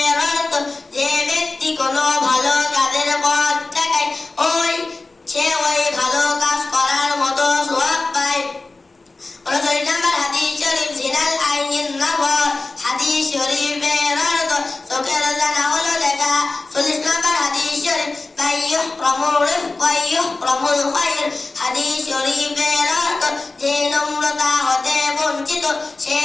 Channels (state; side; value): quieter; right; 3.4 dB